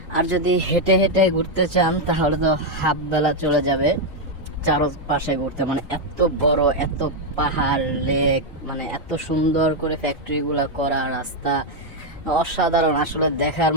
আর যদি হেঁটে হেঁটে ঘুরতে চান তাহলে তো হাফ বেলা চলে যাবে চারপাশে ঘুরতে। মানে এত বড়, এত পাহাড়, লেক, মানে এত সুন্দর করে ফ্যাক্টরিগুলো করা, রাস্তা অসাধারণ, আসলে দেখার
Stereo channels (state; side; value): normal; both; correlation 0.01